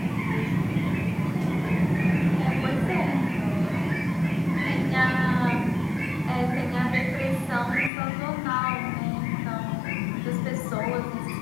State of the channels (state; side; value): drops out; right; at 7.9 s